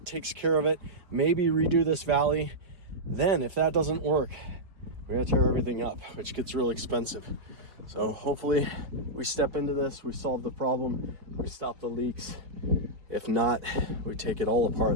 takes care of it. Maybe redo this valley. Then if that doesn't work, we're gonna tear everything up, which gets real expensive. So hopefully we step into this, we solve the problem, we stop the leaks. If not, we take it all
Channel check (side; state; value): left; late; 4.6 ms